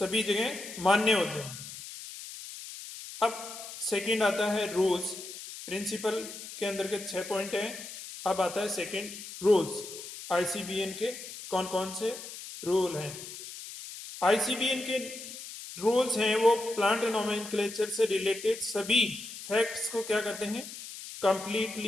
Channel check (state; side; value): noise; left; hiss, 12 dB below the sound